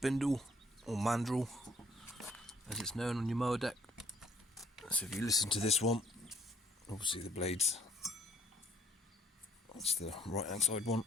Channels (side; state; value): both; normal; correlation 0.64